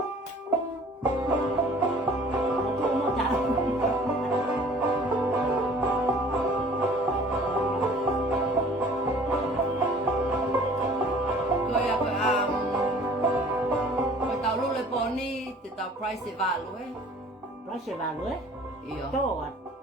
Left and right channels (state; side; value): normal; both; correlation 0.51